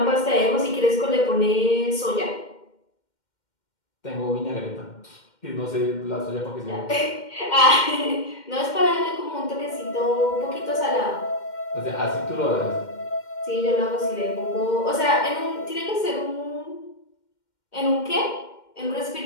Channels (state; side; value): late; right; 2.1 ms